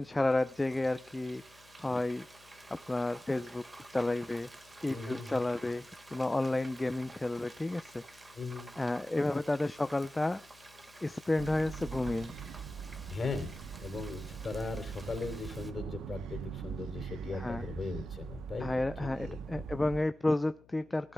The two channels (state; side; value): noise; left; hum, 27 dB below the sound